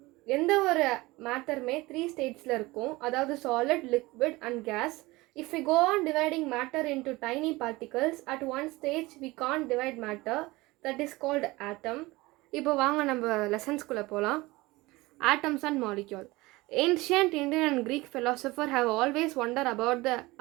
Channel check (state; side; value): quieter; left; 21.2 dB